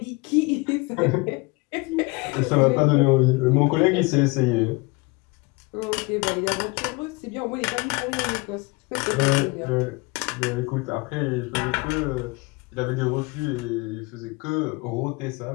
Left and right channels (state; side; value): quieter; right; 26.6 dB